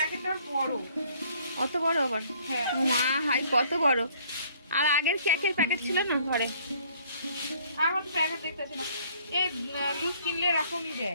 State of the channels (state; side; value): inverted; both; correlation -0.60